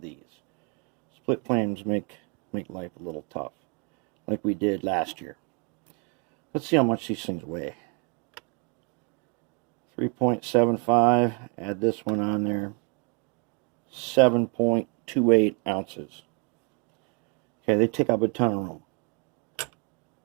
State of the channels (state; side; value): quieter; left; 34.4 dB